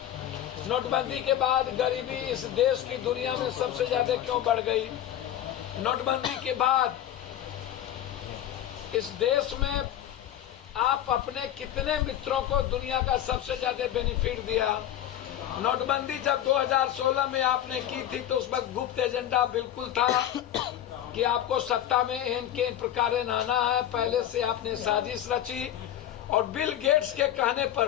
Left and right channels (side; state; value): right; quieter; 11.4 dB